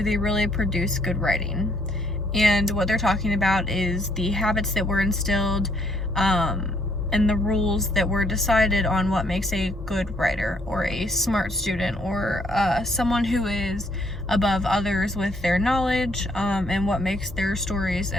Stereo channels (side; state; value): both; normal; correlation 0.68